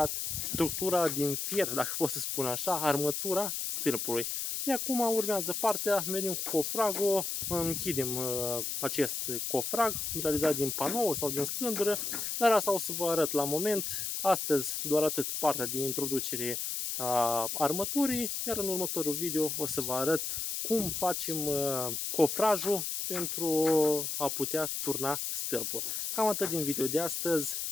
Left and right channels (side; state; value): left; noise; hiss, 2 dB below the sound